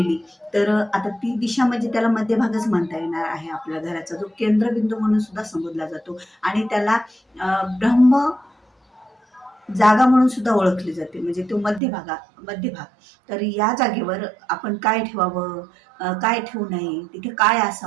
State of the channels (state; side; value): drops out; left; at 11.8 s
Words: तर आता ती दिशा म्हणजे त्याला मध्यभागच म्हणता येणार आहे. आपल्या घराचा जो केंद्रबिंदू म्हणून सुद्धा संबोधला जातो आणि त्याला ब्रह्म जागा म्हणून सुद्धा ओळखली जाते, म्हणजे तो मध्यभाग. तर या जागेवर आपण काय ठेवावं, काय ठेवू नये, तिथे काय